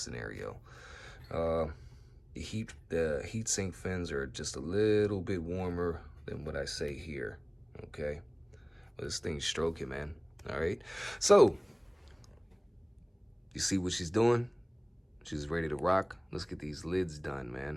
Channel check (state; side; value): identical; both; correlation 1.00